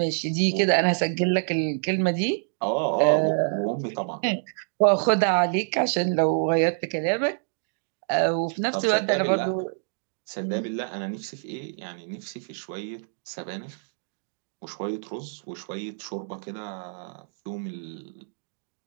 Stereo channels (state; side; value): silent; left; digital silence